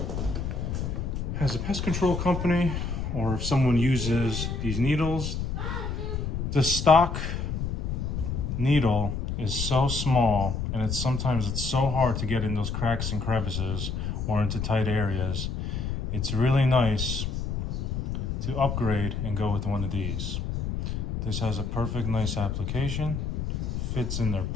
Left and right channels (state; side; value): noise; left; rumble, 2 dB below the sound